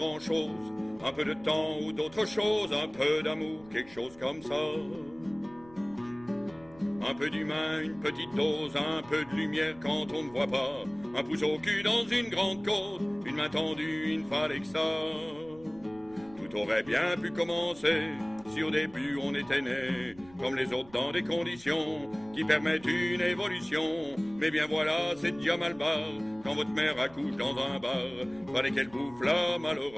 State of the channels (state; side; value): noise; right; rumble, 24 dB below the sound